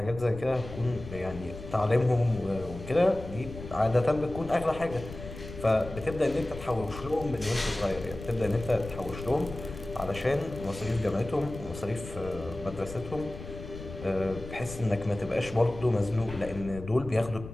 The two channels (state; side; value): noise; left; rumble, 12 dB below the sound